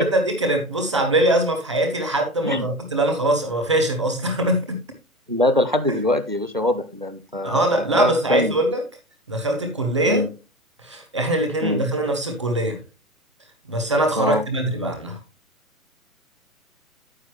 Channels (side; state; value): both; normal; correlation 0.31